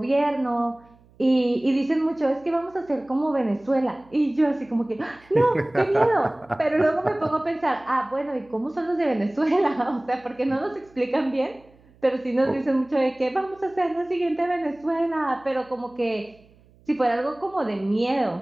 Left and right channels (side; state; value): right; noise; hum, 29 dB below the sound